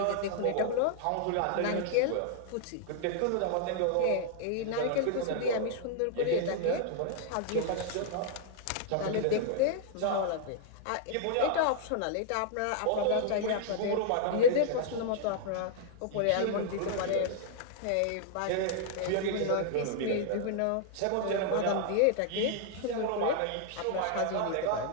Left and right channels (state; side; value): different; both; correlation -0.01